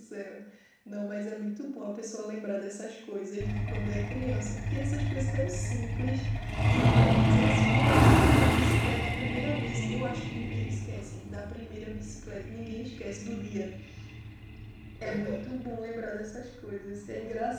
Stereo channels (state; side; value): identical; both; correlation 1.00